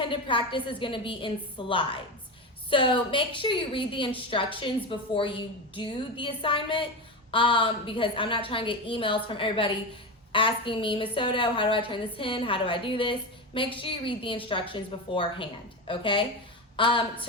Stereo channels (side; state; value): both; normal; correlation 0.19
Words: practice is going to be in slides. So make sure you read the instructions before you do the assignment, because I'm not trying to get emails from everybody asking me, Ms. Soto, how do I turn this in? How do I do this? Make sure you read the instructions beforehand, okay?